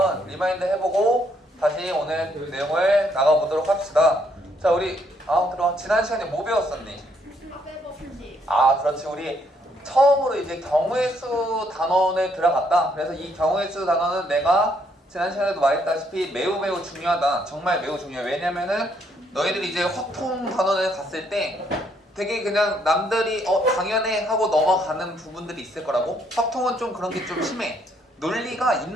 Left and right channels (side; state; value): both; normal; correlation 0.71